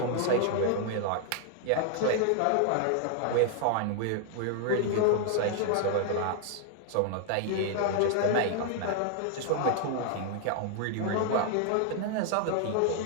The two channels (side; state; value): both; different; correlation 0.00